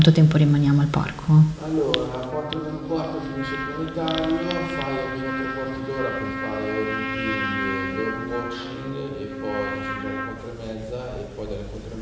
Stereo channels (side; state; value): both; identical; correlation 1.00